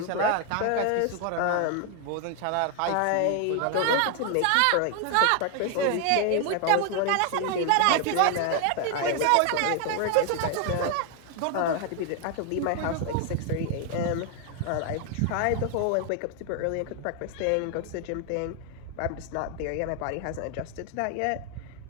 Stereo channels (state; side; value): different; both; correlation 0.00